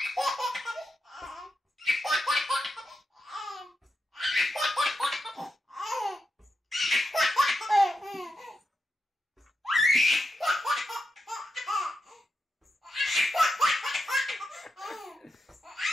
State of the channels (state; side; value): normal; both; correlation 0.86